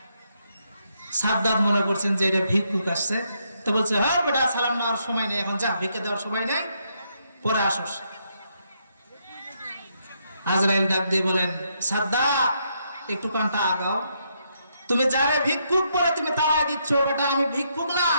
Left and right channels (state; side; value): inverted; both; correlation -0.77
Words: সাদ্দাত মনে করছেন যে এটা ভিক্ষুক আসছে, তো বলছে, হ্যাঁ বেটা, সালাম নেওয়ার সময় নেই, এখন যা, ভিক্ষা দেওয়ার সময় নেই, পরে আসস। আজরাইল ডাক দিয়ে বলেন, সাদ্দাত, একটু কানটা আগাও। তুমি যারে ভিক্ষুক বলে তুমি তাড়াই দিচ্ছ, বেটা আমি ভিক্ষুক না,